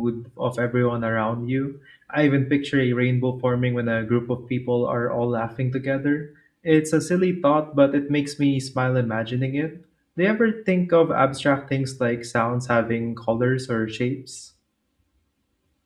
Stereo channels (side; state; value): both; identical; correlation 1.00